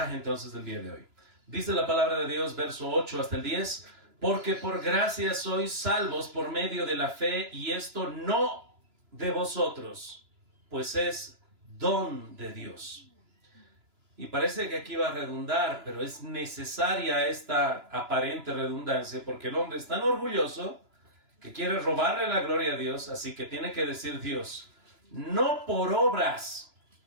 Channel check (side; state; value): left; late; 2.9 ms